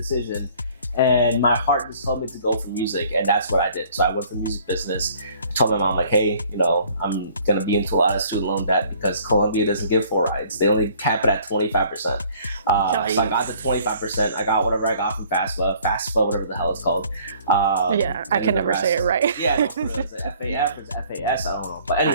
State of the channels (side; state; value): both; inverted; correlation -0.56